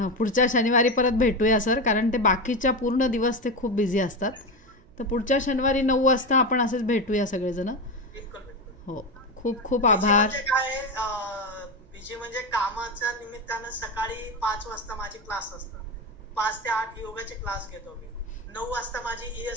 पुढच्या शनिवारी परत भेटूया सर, कारण ते बाकीच्या पूर्ण दिवस ते खूप बिझी असतात. तर पुढच्या शनिवारी 9 वाजता आपण असंच भेटूया सगळेजण. हो, खूप खूप आभार. काय बिजी म्हणजे कामाच्या निमित्तानं सकाळी 5 वाजता माझे क्लास असतात. 5 ते 8 योगाचे क्लास घेतो मी. 9 वाजता माझी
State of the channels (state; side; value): noise; right; hum, 28 dB below the sound